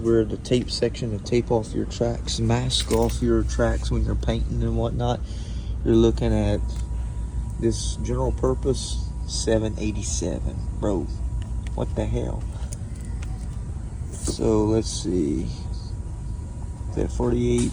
the tape section to tape off your tracks, mask off your tracks when you're painting and whatnot. You're looking at this general purpose 787, bro. What the hell? So let's see. Is that 48?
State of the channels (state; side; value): identical; both; correlation 1.00